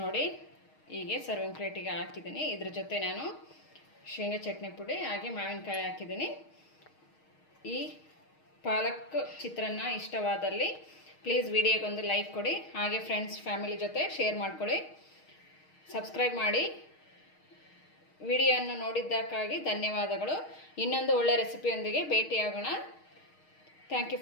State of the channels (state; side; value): late; right; 6.4 ms